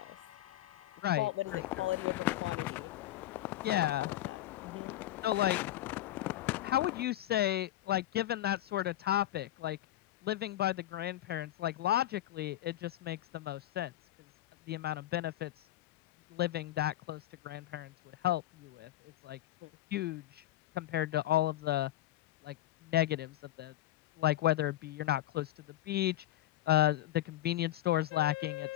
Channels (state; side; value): quieter; right; 14.1 dB